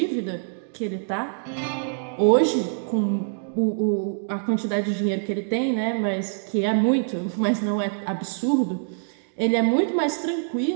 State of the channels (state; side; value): silent; left; digital silence